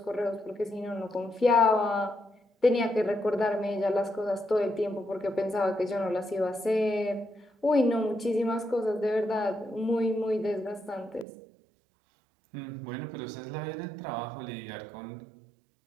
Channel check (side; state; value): left; drops out; at 11.2 s